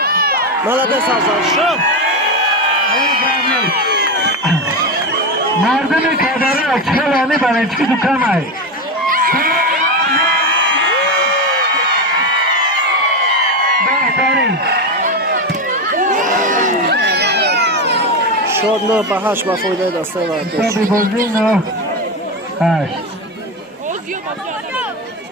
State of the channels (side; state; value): both; normal; correlation 0.15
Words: ملده سازان شد مردم کدره چلانی برای چی دکم های بهترین شد 9 به 8 و فایده دستای وردوچ کتاب بازی 9-8